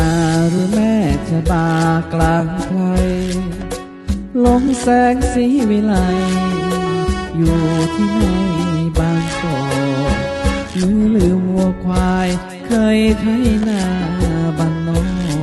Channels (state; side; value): identical; both; correlation 1.00